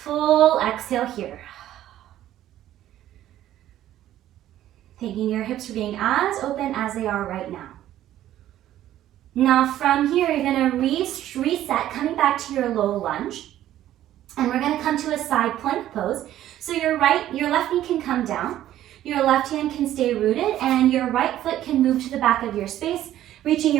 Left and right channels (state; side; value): quieter; left; 12.8 dB